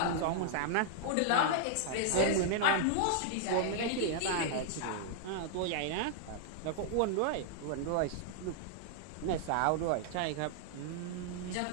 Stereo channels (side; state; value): both; different; correlation -0.01